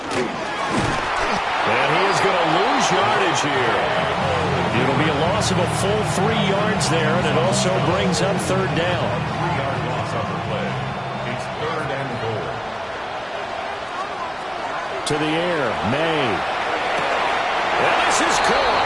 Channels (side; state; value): both; identical; correlation 1.00